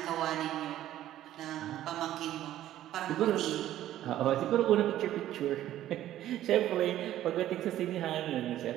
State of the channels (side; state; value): left; quieter; 13.0 dB